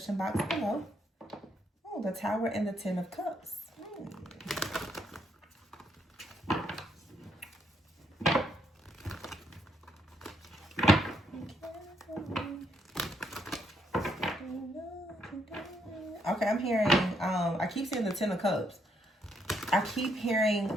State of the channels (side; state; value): both; normal; correlation 0.74